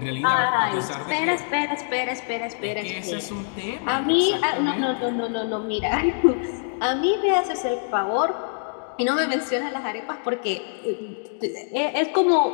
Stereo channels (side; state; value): right; silent; digital silence